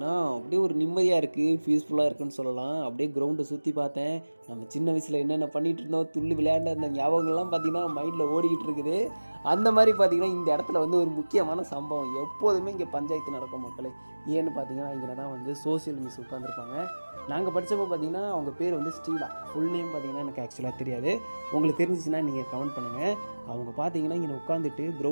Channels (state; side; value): inverted; both; correlation -1.00